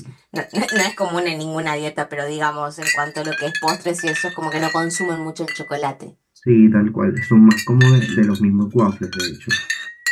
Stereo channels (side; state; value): both; identical; correlation 1.00